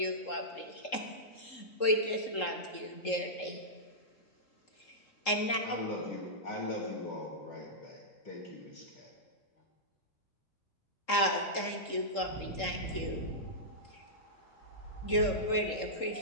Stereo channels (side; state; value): right; late; 3.7 ms